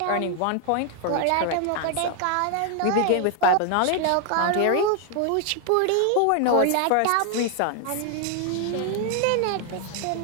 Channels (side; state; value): both; different; correlation 0.00